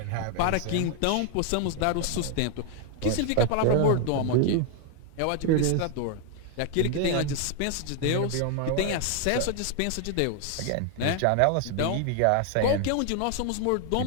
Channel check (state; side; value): different; both; correlation 0.00